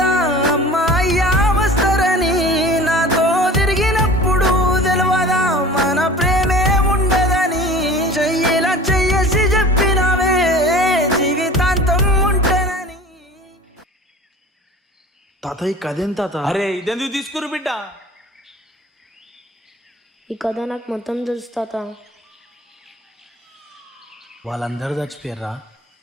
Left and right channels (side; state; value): both; normal; correlation 0.42